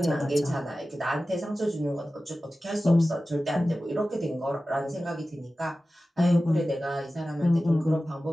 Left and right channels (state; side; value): normal; both; correlation 0.95